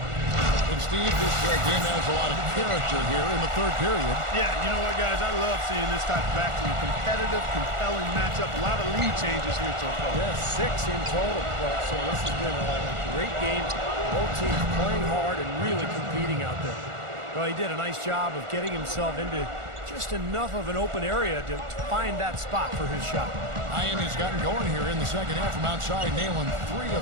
And Steve, this game has a lot of character here in the third period. Yeah, you know what, guys? I love seeing this type of action. Competitive, compelling matchup. A lot of lead changes here so far. Yeah, 6 in total. Well, so this has been a great game. Both teams playing hard and really competing out there. Well, he did a nice job of getting himself into just enough of an open area to find that spot for his shot. Miami's gotten going here in the second half from outside, nailing 3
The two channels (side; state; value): left; late; 1.4 ms